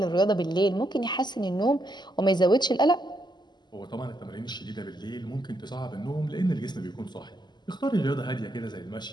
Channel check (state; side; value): late; right; 0.21 ms